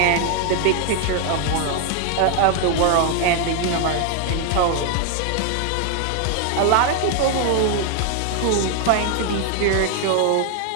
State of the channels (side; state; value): both; different; correlation 0.00